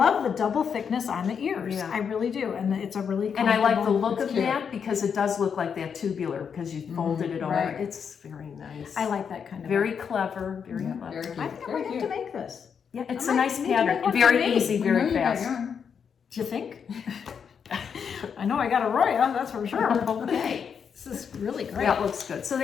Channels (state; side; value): quieter; right; 6.9 dB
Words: the double thickness on the ears. Yeah. I really do. And it's a really And I like the comfortable- look of cute. that because it does look like that tubular because you folded it over. right. It's very nice. I like that kind of. Very clever, very Yeah, clever. very cute. I think I Very might have cute. to make this. Yeah, it's I a might nice need to make pattern. one for Very me. easy, We know very you got fast. yarn. Do you think? I know I got a Roya, that's for sure. Okay. This is really great. That looks good. So